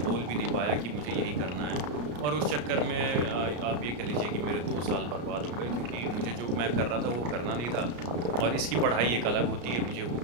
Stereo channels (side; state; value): left; late; 34 ms